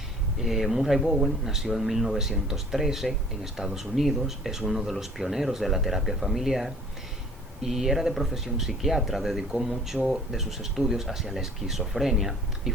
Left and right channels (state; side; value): normal; both; correlation 0.52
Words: Murray-Bowen nació en 1913 en Estados Unidos, es uno de los pioneros de la terapia familiar y era de profesión psiquiatra. Dedicó mucho de sus estudios hacia la esquizofrenia y